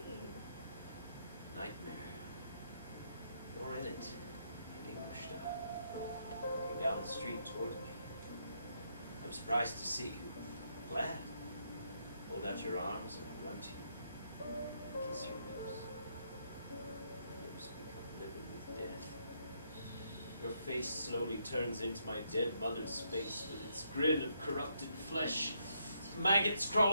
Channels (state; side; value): inverted; both; correlation -0.75